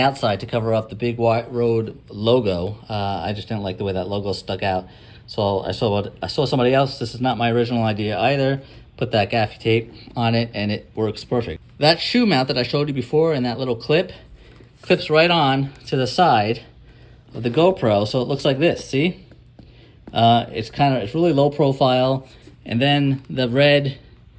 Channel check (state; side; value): identical; both; correlation 1.00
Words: to cover up the big Rode logo. I just didn't like the way that logo stuck out. So I saw somebody else. This is not my original idea either. Put that gaffy tape on it, and it works perfect. That shoe mount that I showed you before and that little clip clips right on to the side of the GoPro, so it looks like this. See? It's really low profile, and then the red